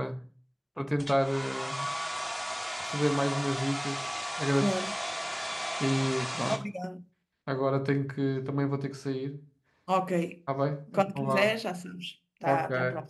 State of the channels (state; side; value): identical; both; correlation 1.00